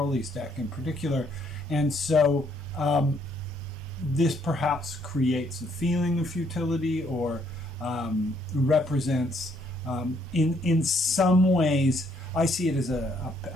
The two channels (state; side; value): normal; both; correlation 0.69